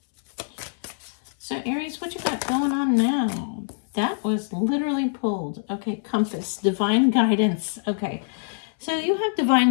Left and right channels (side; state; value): right; silent; 62 dB below the other